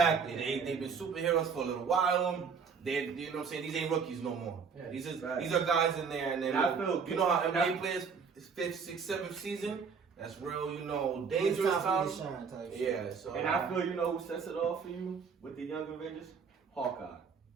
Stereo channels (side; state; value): left; quieter; 5.8 dB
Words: They've been superheroes for a little while. They, you know what I'm saying? These ain't rookies no more. Yeah. These Right. are guys in there, and then And I feel you know how good. NBA players, 5th, 6th, 7th season. That's real, dangerous times. Yeah. So And I feel you know who sets it off for you with the young Avengers? Hawkeye.